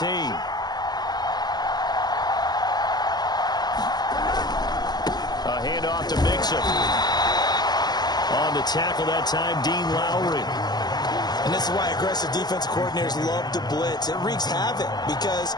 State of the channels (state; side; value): late; right; 0.20 ms